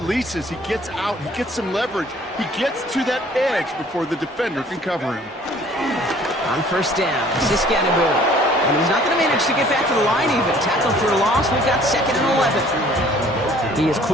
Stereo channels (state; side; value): normal; both; correlation 0.55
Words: he gets out, he gets some leverage. He gets to that edge before the defender can cover him. On 1st down, Scatterboo. And he's not going to manage to get back to the line even. Tackle for a loss. We've got 2nd and 11. He is